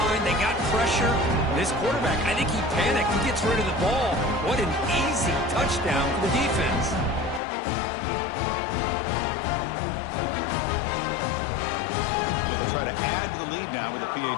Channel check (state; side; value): drops out; right; at 7.4 s